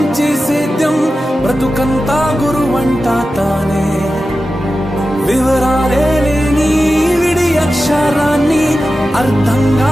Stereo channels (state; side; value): normal; both; correlation 0.93